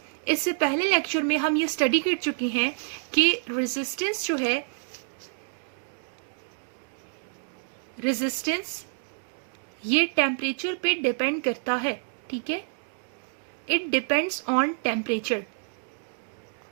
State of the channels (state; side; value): silent; left; digital silence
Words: इससे पहले लेक्चर में हम ये स्टडी कर चुके हैं कि रेजिस्टेंस जो है, रेजिस्टेंस ये टेम्परेचर पे डिपेंड करता है। ठीक है, इट डिपेंड्स ऑन टेम्परेचर।